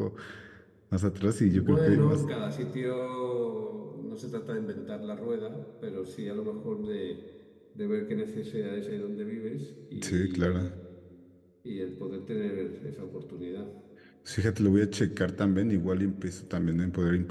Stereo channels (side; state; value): both; identical; correlation 1.00